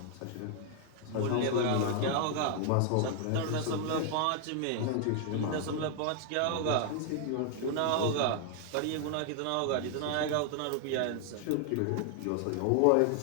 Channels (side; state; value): both; different; correlation 0.00